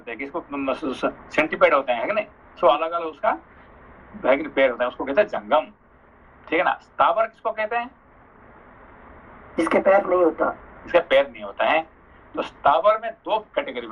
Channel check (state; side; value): identical; both; correlation 1.00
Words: हैं, किसको सेंटीपेड होते हैं, है कि नहीं? सो अलग अलग उसका पैर होता है, उसको कहते हैं जंगम। ठीक है ना? स्थावर किसको कहते हैं? जिसके पैर नहीं होता, इसका पैर नहीं होता है। तो स्थावर में 2 कैटेगरी